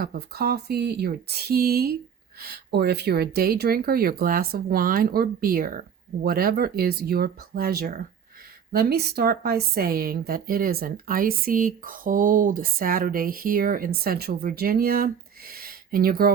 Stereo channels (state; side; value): quieter; left; 7.7 dB